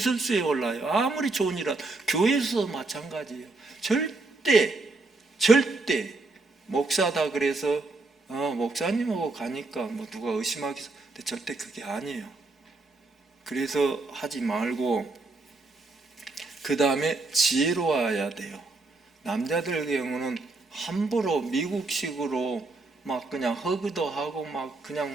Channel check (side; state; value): left; quieter; 3.4 dB